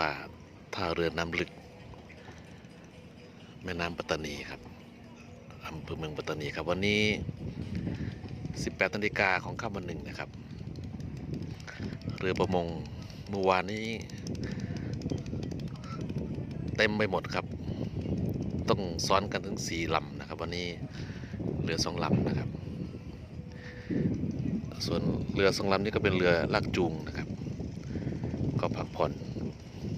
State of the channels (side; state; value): both; identical; correlation 1.00